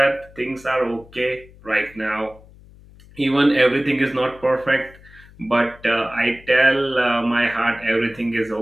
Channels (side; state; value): left; noise; hum, 23 dB below the sound